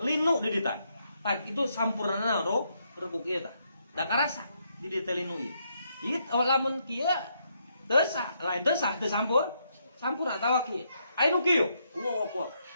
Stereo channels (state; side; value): inverted; both; correlation -0.77